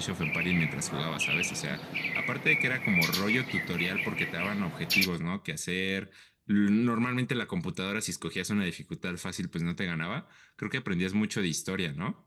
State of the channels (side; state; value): both; identical; correlation 1.00